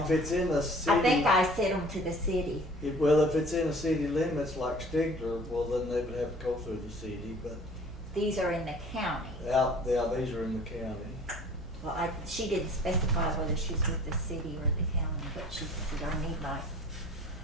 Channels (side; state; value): both; normal; correlation 0.48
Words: them. it's in the city. I think I sent them to the city. Well, if it's in the city limits like Stigler, well, then they would have to go through the city, but These are in the county. yeah, these are in the county. Well, she didn't specify whether she's with the city or the county, but she said, I need my